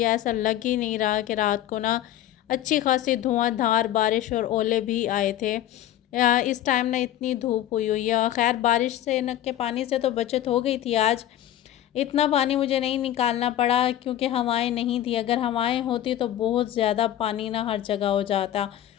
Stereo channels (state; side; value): quieter; right; 12.5 dB